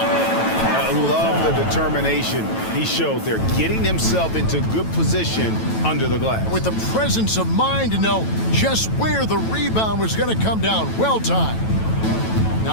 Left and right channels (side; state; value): right; late; 9.1 ms